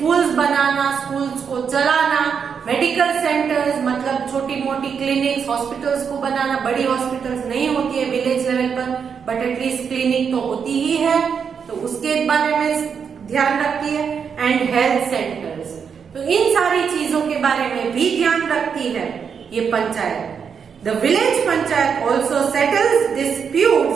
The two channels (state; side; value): quieter; left; 6.7 dB